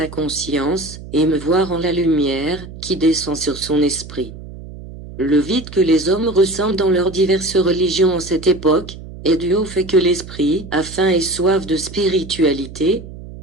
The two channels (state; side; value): noise; right; hum, 14 dB below the sound